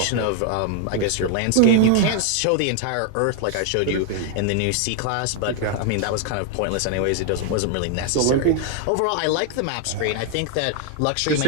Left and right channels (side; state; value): both; different; correlation 0.00